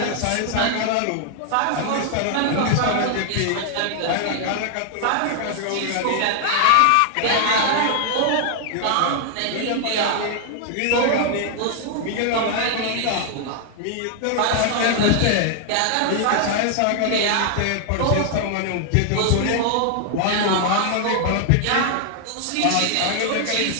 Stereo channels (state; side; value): different; both; correlation 0.00